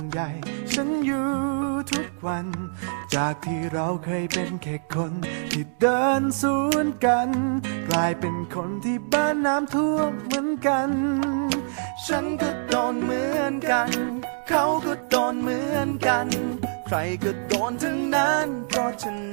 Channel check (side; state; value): left; silent; digital silence